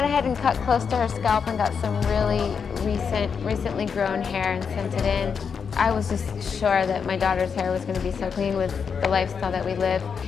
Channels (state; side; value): quieter; right; 6.3 dB